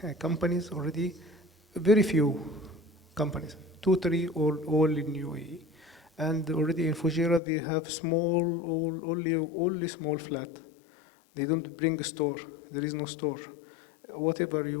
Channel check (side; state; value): right; drops out; at 7.4 s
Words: companies, already very few companies, 2, 3, all in UAE. And already in Fujairah, they have only small flat. They don't bring a store. There is no store. Whatever